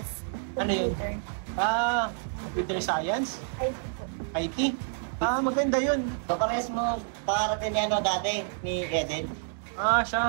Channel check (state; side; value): silent; left; digital silence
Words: Ano yun? Computer Science? IT po. IT? Maganda yun. So, parehas mo pakarating ni dati, ni Eden.